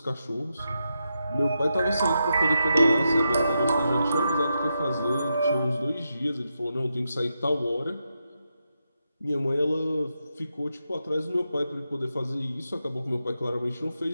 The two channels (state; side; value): inverted; both; correlation -0.85